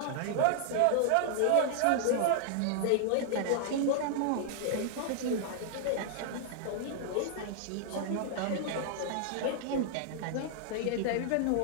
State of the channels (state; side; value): different; both; correlation -0.01